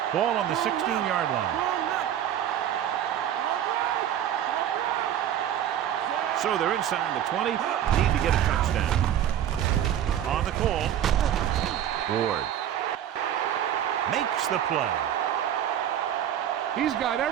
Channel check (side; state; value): left; quieter; 10.6 dB